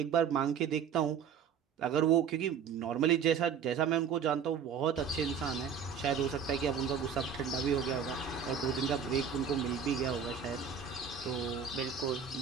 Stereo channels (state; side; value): quieter; left; 7.1 dB